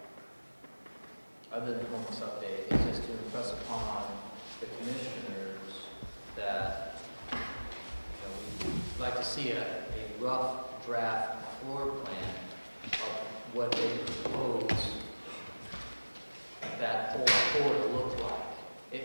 other than the homeless update, is just to impress upon the commissioners that we'd like to see a rough draft floor plan of what they propose that whole floor to look like.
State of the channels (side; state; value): both; inverted; correlation -1.00